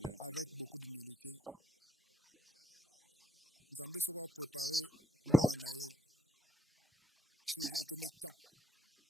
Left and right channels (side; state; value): both; normal; correlation 0.77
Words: avec beaucoup d'humilité. Nzambe sera préparé moi naé sur les commettants.